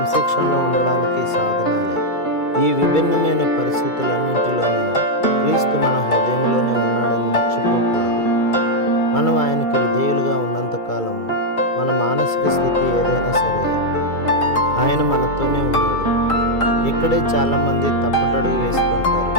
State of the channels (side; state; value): right; late; 2.3 ms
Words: ఉండడానికి సాధనాలే. ఈ విభిన్నమైన పరిస్థితులన్నింటిలోనూ క్రీస్తు మన హృదయంలోనే ఉన్నాడని మర్చిపోకూడదు. మనం ఆయనకు విధేయులుగా ఉన్నంతకాలం మన మానసిక స్థితి ఏదైనా సరే ఆయన మనతోనే ఉన్నాడు. ఇక్కడే చాలామంది తప్పటడుగు వేస్తుంటారు.